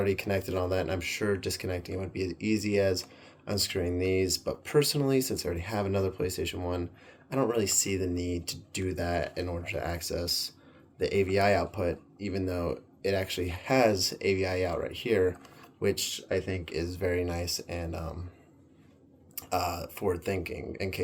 connected on that, and I'm sure disconnecting it would be as easy as unscrewing these. But personally, since I already have another PlayStation 1, I don't really see the need to do that in order to access the AVI output, even though it actually has AVI out right here, which I think is very nice and forward thinking in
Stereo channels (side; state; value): both; identical; correlation 1.00